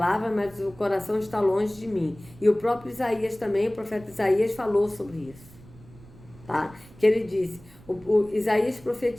mas o coração está longe de mim. E o próprio Isaías também, o profeta Isaías falou sobre isso, tá? Que ele disse, o Isaías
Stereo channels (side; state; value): right; noise; rumble, 22 dB below the sound